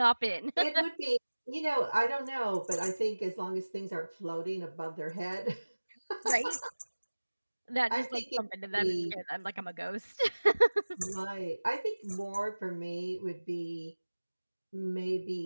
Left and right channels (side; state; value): both; inverted; correlation -1.00